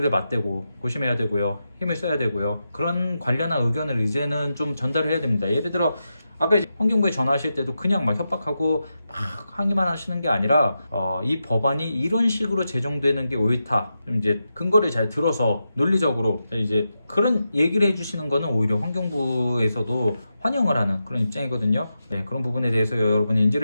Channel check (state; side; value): inverted; both; correlation -0.88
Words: 맞대고 고심해야 되고요. 힘을 써야 되고요. 그런 관련한 의견을 이제는 좀 전달을 해야 됩니다. 예를 들어 아까 이제 환경부에 전화하실 때도 그냥 막 협박하고 막 항의만 하시는 게 아니라 이 법안이 이런 식으로 제정되는 게 옳다. 좀 이제 근거를 잘 들어서 논리적으로 이제 그런 얘기를 해주시는 거는 오히려 환경부에서도 환영을 하는 그런 입장이거든요. 네, 그런 부분에 대해서 여러분이